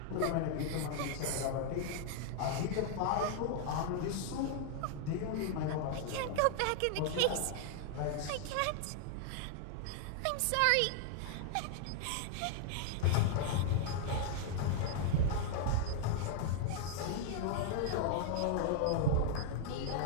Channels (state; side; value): different; both; correlation 0.00